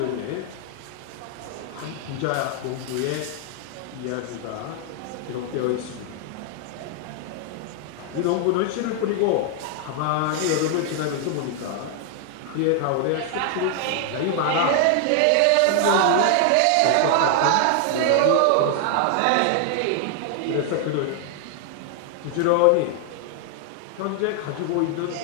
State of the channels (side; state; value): both; different; correlation 0.00